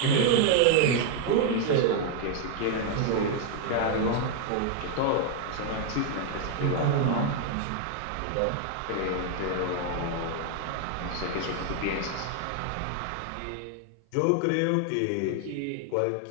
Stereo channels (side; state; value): both; different; correlation 0.00